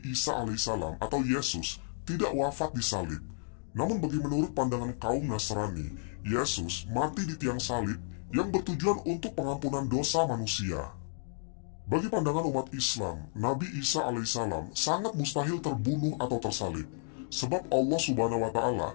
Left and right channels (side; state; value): right; silent; digital silence